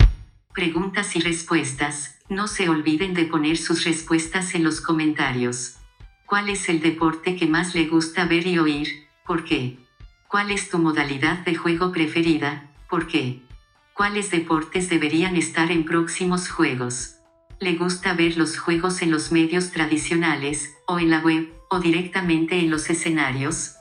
Preguntas y respuestas. No se olviden de poner sus respuestas en los comentarios. ¿Cuál es el deporte que más le gusta ver y oír? ¿Por qué? ¿Cuál es tu modalidad de juego preferida? ¿Por qué? ¿Cuáles deportes deberían estar en próximos juegos? ¿Le gusta ver los juegos en los medios tradicionales, o en la web, o directamente en los escenarios?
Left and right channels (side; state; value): both; identical; correlation 1.00